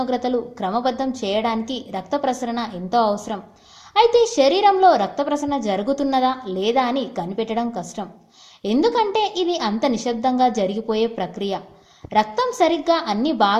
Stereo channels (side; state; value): both; identical; correlation 1.00